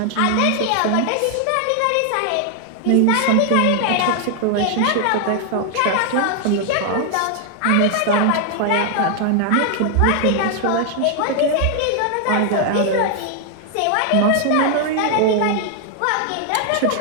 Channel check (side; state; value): both; different; correlation 0.00